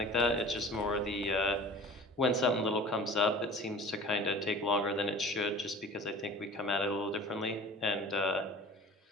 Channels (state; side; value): normal; both; correlation 0.41